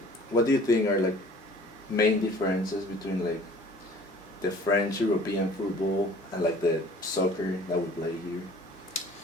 what do you think are main differences between the French European football and the soccer that we play here?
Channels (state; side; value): normal; both; correlation 0.50